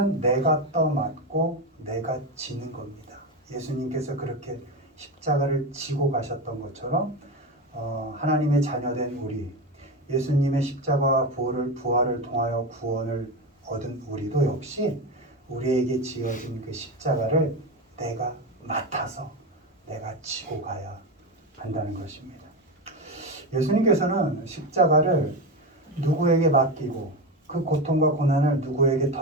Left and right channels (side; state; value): both; normal; correlation 0.18